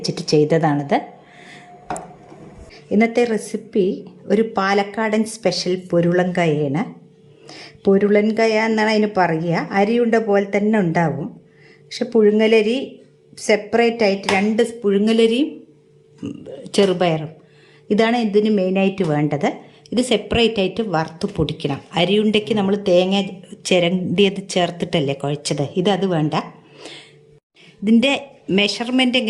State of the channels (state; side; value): identical; both; correlation 1.00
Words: ചെയ്തതാണിത്. ഇന്നത്തെ റെസിപ്പി ഒരു പാലക്കാടൻ സ്പെഷ്യൽ പൊരുളൻകായാണ്. പൊരുളൻകായ എന്നാണ് അതിന് പറയുക. അരിയുണ്ട പോലെ തന്നെ ഉണ്ടാവും. പക്ഷെ പുഴുങ്ങലരി സെപ്പറേറ്റ് ആയിട്ട്, രണ്ട് പുഴുങ്ങലരിയും ചെറുപയറും ഇതാണ് ഇതിന് മെയിനായിട്ട് വേണ്ടത്. ഇത് സെപ്പറേറ്റ് ആയിട്ട് വറുത്ത് പൊടിക്കണം. അരിയുണ്ടയ്ക്ക് നമ്മൾ തേങ്ങ ചിരണ്ടിയത് ചേർത്തിട്ടല്ലേ കുഴച്ചത്, അത് വേണ്ട. ഇതിൻ്റെ മെഷർമെൻറ്റ്